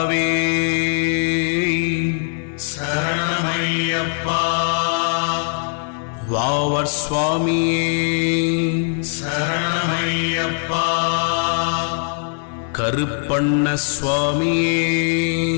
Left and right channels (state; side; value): silent; right; digital silence